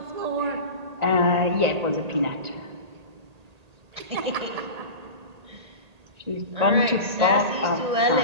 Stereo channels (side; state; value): left; late; 1.8 ms